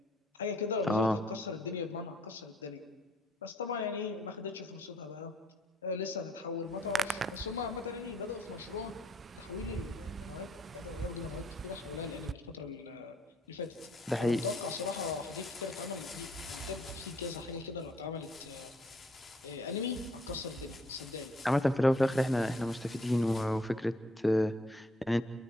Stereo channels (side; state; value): both; normal; correlation 0.66